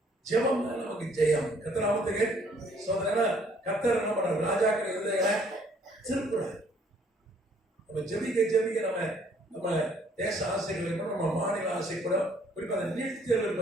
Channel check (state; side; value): normal; both; correlation 0.62